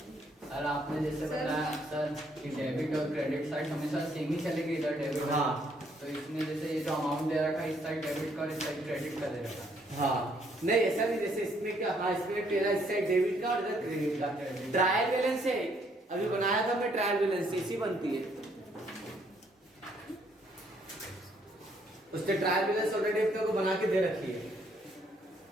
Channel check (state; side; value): normal; both; correlation 0.68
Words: सर आपने जैसे बताया सर कि डेबिट और क्रेडिट साइड हमेशा सेम ही चलेगी इधर डेबिट। हाँ। तो इसमें जैसे ये जो अमाउंट दे रखा है इस साइड डेबिट का और इस साइड क्रेडिट का दे रखा है। हाँ नहीं ऐसा नहीं। जैसे इसमें क्या? हाँ इसमें तेरा इस साइड डेबिट का और इधर क्रेडिट का। ट्रायल बैलेंस है। अभी बनाया था मैं ट्रायल बैलेंस, इसी बनती है। उसने ट्रायल बैलेंस ऑलरेडी अपने को बना के दे रखी है।